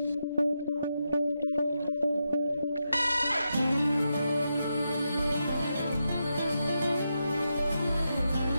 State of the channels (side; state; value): both; inverted; correlation -0.86